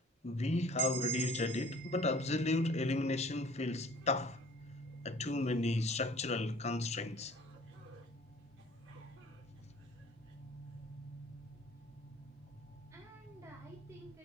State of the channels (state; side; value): normal; both; correlation 0.51